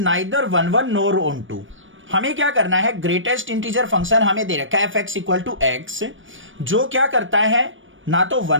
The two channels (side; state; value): left; late; 0.57 ms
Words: neither 1 nor onto. हमें क्या करना है, greatest integer function हमें दे रखा है f x equal to x, जो क्या करता है ना तो